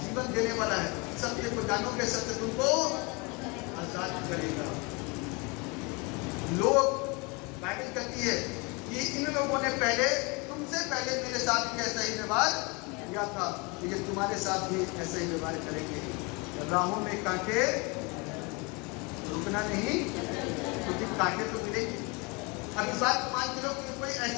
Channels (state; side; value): quieter; right; 28.8 dB